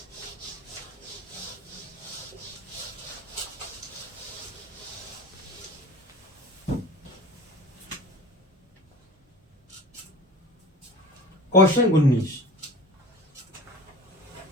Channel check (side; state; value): both; normal; correlation 0.41